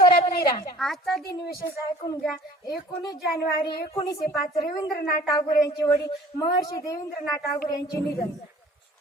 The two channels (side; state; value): both; normal; correlation 0.49